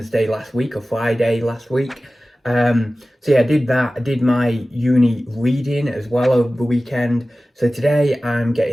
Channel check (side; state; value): both; normal; correlation 0.96